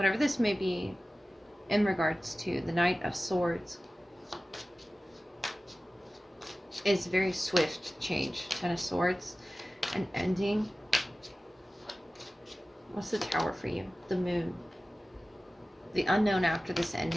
this may be in regards to the Knight of Swords is very swift change. Ten of Swords, an ending. What's the Tower for you? The Moon. The unknown after this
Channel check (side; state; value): both; normal; correlation 0.96